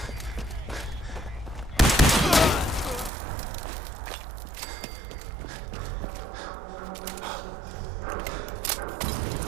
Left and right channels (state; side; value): drops out; left; at 3.1 s